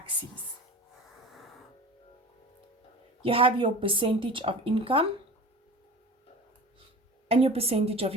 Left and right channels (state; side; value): normal; both; correlation 0.37